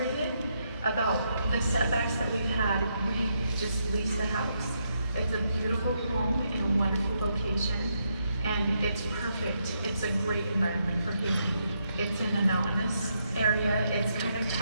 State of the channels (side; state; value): both; inverted; correlation -0.79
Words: about the setbacks that we've had, we just leased a house. It's a beautiful home in a wonderful location, and it's perfect. It's a great environment for healing. It's in a mountainous area. It's kind of